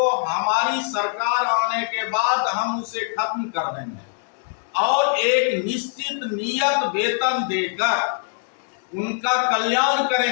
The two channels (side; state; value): right; silent; 57 dB below the other